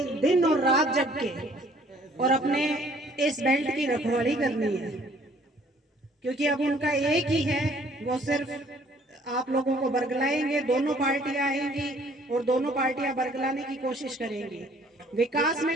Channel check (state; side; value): normal; both; correlation 0.59